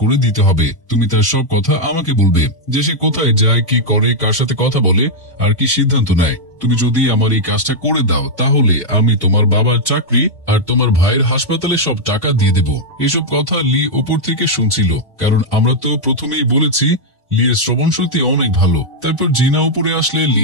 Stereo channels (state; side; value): normal; both; correlation -0.03